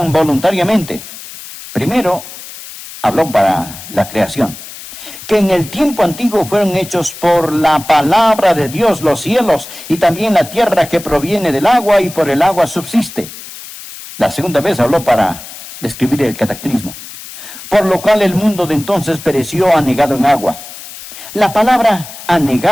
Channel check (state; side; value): noise; left; hiss, 14 dB below the sound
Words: voluntariamente. Primero, habló para la creación. Que en el tiempo antiguo fueron hechos por la palabra de Dios los cielos y también la tierra que proviene del agua y por el agua subsiste. La segunda vez habló para describir el cataclismo. Por lo cual el mundo de entonces pereció anegado en agua. La palabra